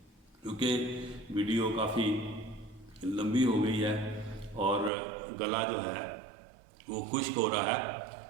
کیونکہ ویڈیو کافی لمبی ہو گئی ہے اور گلا جو ہے وہ خشک ہو رہا ہے،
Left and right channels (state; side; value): drops out; left; at 4.9 s